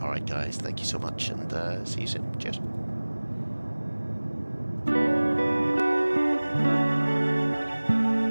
Alright guys, thank you so much and see you soon. Cheers.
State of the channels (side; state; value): both; inverted; correlation -1.00